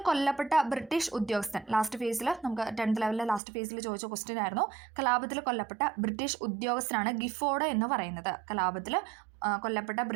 കൊല്ലപ്പെട്ട ബ്രിട്ടീഷ് ഉദ്യോഗസ്ഥൻ, ലാസ്റ്റ് ഫേസിൽ നമുക്ക് 10th ലെവലിലെ ലാസ്റ്റ് ഫേസിൽ ചോദിച്ച ക്വസ്റ്റ്യൻ ആയിരുന്നു. കലാപത്തിൽ കൊല്ലപ്പെട്ട ബ്രിട്ടീഷ് ഉദ്യോഗസ്ഥനാണ് ഗിഫോർഡ് എന്ന് പറയുന്നത്. കലാപത്തിൽ കൊല്ലപ്പെട്ട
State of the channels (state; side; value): drops out; left; at 3.4 s